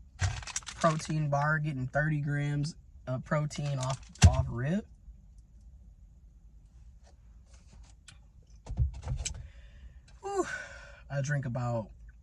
Protein bar, getting 30 grams of protein off rip. Whew. I drink about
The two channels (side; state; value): both; identical; correlation 1.00